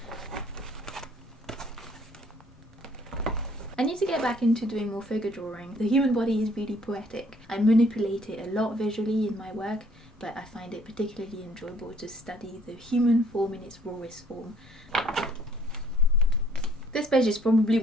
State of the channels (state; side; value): normal; both; correlation 0.62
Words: I need to get back into doing more figure drawing. The human body is really poetic. I manipulate it a lot visually in my work, but I find it particularly enjoyable to study the human form in its rawest form. This page is probably